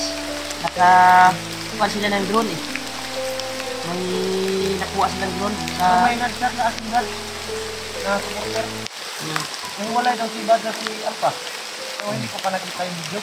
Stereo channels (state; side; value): identical; both; correlation 1.00